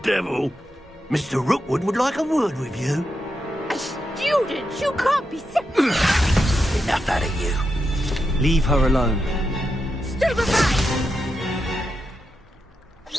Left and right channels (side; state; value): both; normal; correlation 0.86